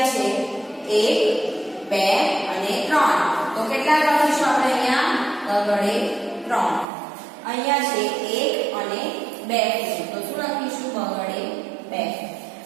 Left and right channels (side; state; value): left; drops out; at 6.9 s